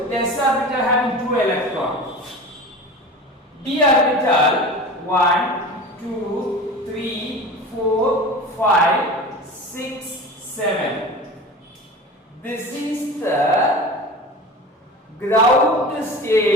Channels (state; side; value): normal; both; correlation 0.34